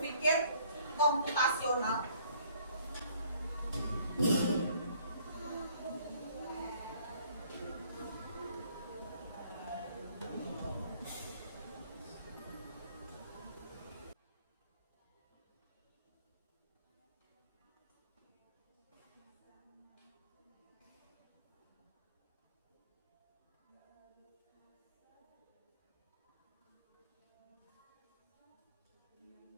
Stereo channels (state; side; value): inverted; both; correlation -0.60